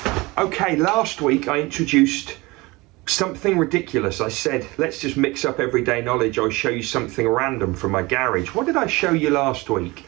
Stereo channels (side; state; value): left; quieter; 22.9 dB